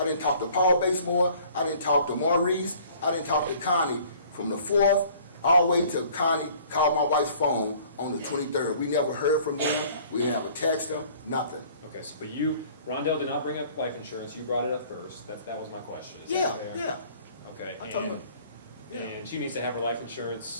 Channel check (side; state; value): both; inverted; correlation -0.53